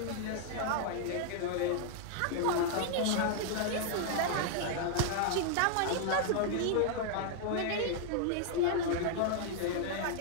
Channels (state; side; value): different; both; correlation -0.01